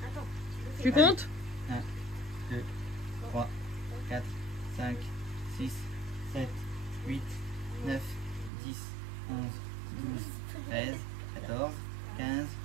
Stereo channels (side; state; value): left; drops out; at 8.5 s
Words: Attends. Tu comptes? 1, 2, 3, 4, 5, 6, 7, 8, 9, 10, 11, 12, 13, 14, 15,